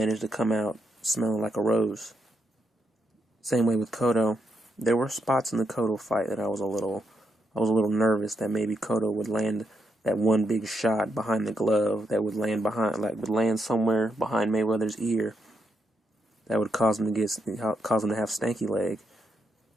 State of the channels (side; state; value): both; normal; correlation 0.81